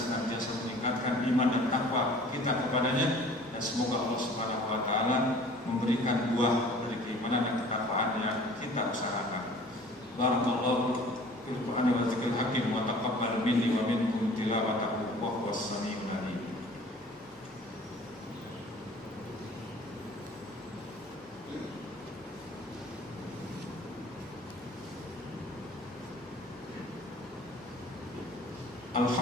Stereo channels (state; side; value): noise; left; hum, 29 dB below the sound